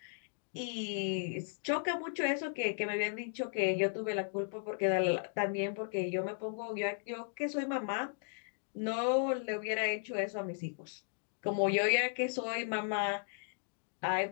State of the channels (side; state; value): right; silent; digital silence